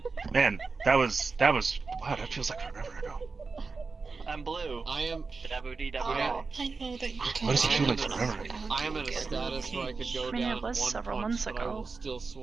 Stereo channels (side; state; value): left; quieter; 4.4 dB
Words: Man, that was, wow, that feels like forever ago. I'm blue. I am. I know that you can't. What does it feel like forever ago? I am in a status where I could go I mean, down it was one several punch, months but I ago. will still